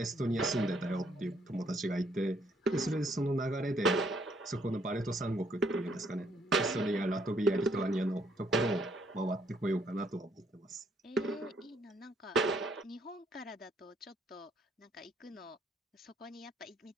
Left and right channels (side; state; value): both; normal; correlation 0.69